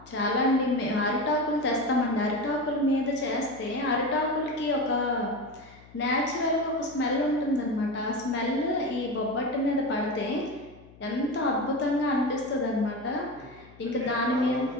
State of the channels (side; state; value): left; noise; hum, 23 dB below the sound